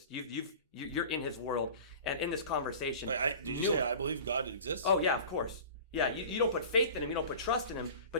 You're in His world, and in this conversation. Did you say I believe God exists? Oh yeah, of course. Yeah, you don't put faith in Him, you don't put trust in Him,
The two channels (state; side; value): inverted; both; correlation -0.39